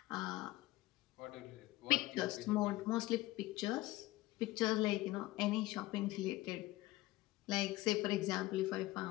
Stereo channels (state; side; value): quieter; right; 18.2 dB